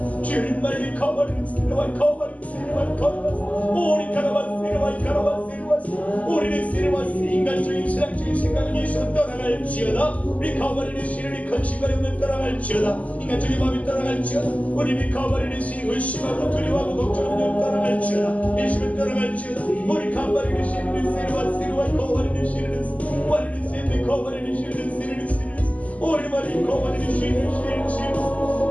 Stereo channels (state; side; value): late; right; 0.072 ms